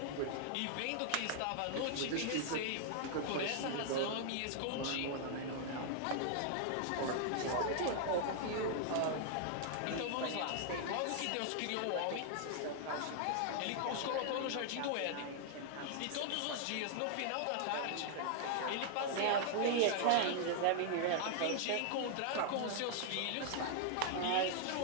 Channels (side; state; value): both; different; correlation 0.00